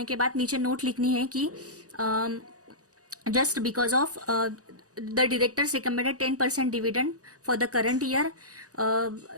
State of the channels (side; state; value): left; late; 0.67 ms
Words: के बाद नीचे नोट लिखनी है कि just because of the directors recommended 10% dividend for the current year